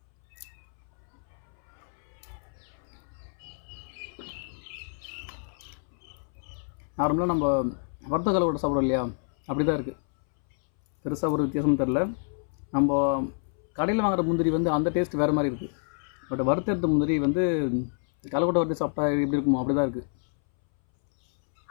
நார்மலாக நம்ம வறுத்த கலவோட சாப்பிட்றோம் இல்லையா, அப்படி தான் இருக்குது. பெருசாக ஒரு வித்தியாசமும் தெரில. நம்ம கடையில் வாங்குகிற முந்திரி வந்து அந்த டேஸ்ட் வேறு மாதிரி இருக்குது. பட் வறுத்தெடுத்த முந்திரி வந்து கலக்கொட்டை வறுத்து சாப்பிட்டா எப்படி இருக்குமோ அப்படி தான் இருக்குது.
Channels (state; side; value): silent; right; 59 dB below the other